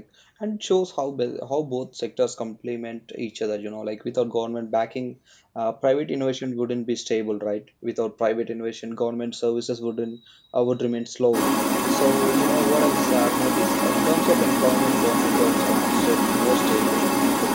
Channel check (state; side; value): identical; both; correlation 1.00